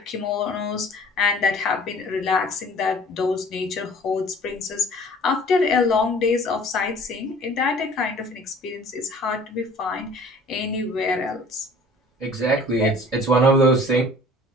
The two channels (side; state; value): both; normal; correlation 0.50